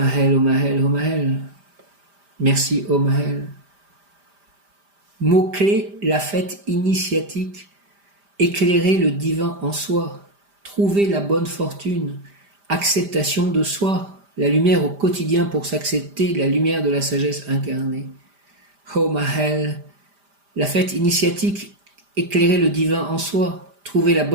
ô Maël, ô Maël. Merci, ô Maël. Mot-clé, la fête initiatique. Éclairer le divin en soi. Trouver la bonne fortune. Acceptation de soi. La lumière au quotidien pour s'accepter, la lumière de la sagesse incarnée. Oh Maël, la fête initiatique, éclairer le divin en soi, trouver la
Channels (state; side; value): late; left; 5.0 ms